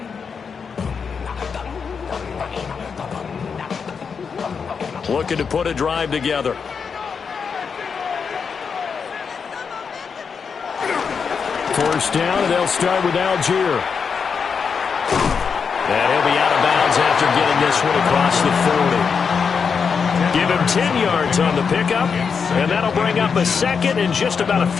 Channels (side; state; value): right; quieter; 6.0 dB